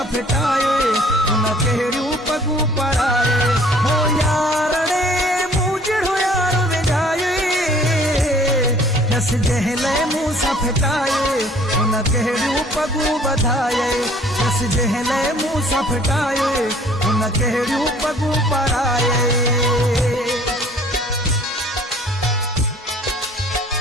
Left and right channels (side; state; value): both; normal; correlation 0.54